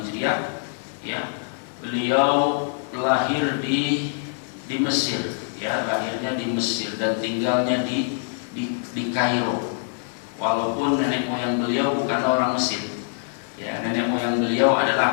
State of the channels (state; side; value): silent; right; 60 dB below the other